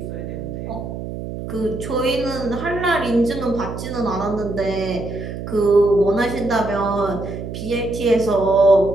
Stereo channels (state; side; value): noise; right; hum, 8 dB below the sound